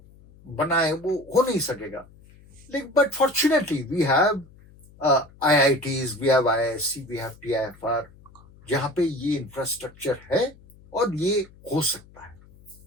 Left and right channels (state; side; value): noise; left; hum, 25 dB below the sound